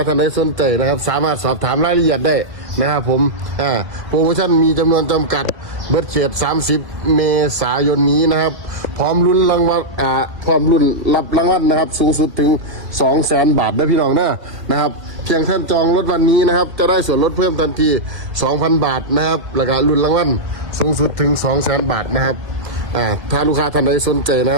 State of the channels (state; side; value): late; left; 1.7 ms